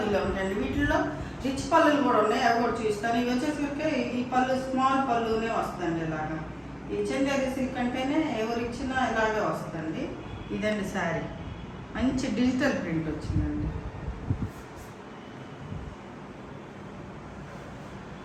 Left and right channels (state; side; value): identical; both; correlation 1.00